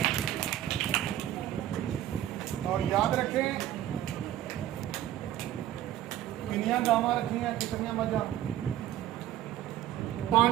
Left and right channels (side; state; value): left; quieter; 12.6 dB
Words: और याद रखें कितनियां गावां रखी हैं, कितनियां मझां?